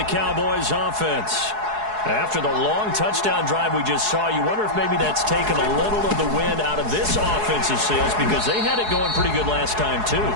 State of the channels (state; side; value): late; left; 4.7 ms